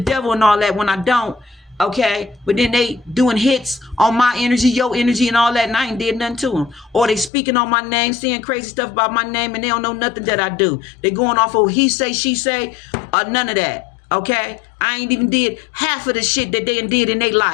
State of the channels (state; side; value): drops out; right; at 7.3 s